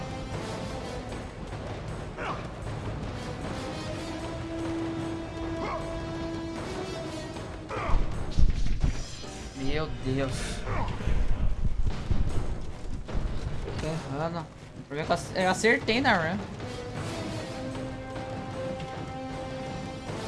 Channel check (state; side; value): identical; both; correlation 1.00